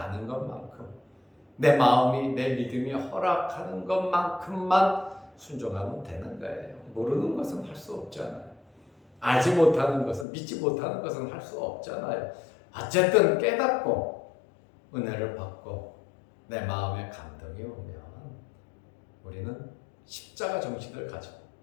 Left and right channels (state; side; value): drops out; right; at 10.2 s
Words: 아는 것만큼 내 마음이 내 믿음이 허락하는 것만큼만 순종하면 되는 거예요. 모르는 것은 할 수 없잖아요. 알지 못하는 것은 믿지 못하는 것은 할 수 없잖아요. 어쨌든 깨닫고 은혜를 받고 내 마음에 감동이 오면 우리는 십자가 정신을 가지고